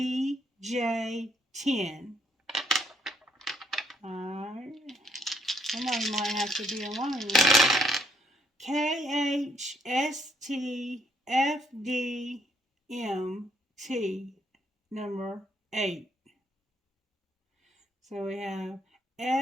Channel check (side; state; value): both; normal; correlation 0.70